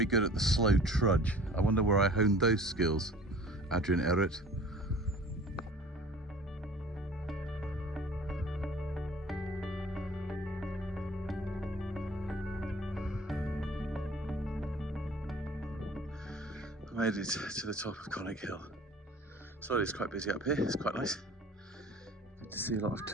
good at the slow trudge. I wonder where I honed those skills, Adrian Errett. Made it to the top of Conic Hill. So it's quite busy up here, it's quite nice. Good to see a lot of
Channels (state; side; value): normal; both; correlation 0.47